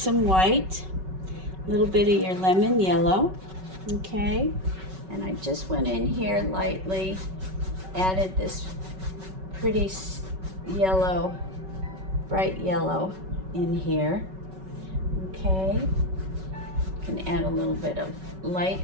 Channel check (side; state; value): left; late; 5.3 ms